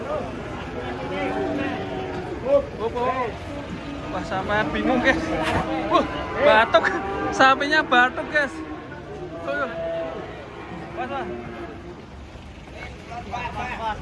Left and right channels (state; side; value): identical; both; correlation 1.00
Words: Wah, sampai bingung guys. Batuk. Sapinya batuk guys.